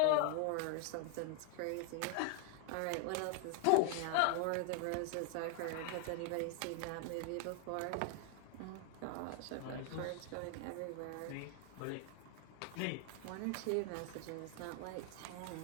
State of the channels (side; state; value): both; different; correlation 0.00